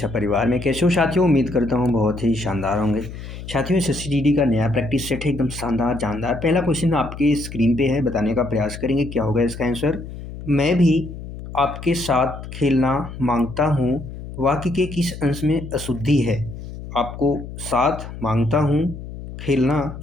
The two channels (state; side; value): noise; left; hum, 11 dB below the sound